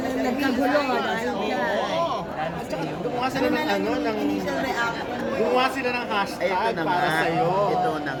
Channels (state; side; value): identical; both; correlation 1.00